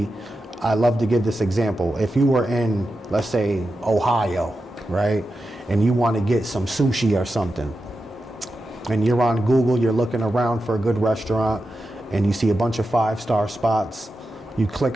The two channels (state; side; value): normal; both; correlation 0.90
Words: I love to give this example. If you were in, let's say, Ohio, right? And you wanna get some sushi or something, and you're on Google, you're looking around for a good restaurant, and you see a bunch of 5-star spots. You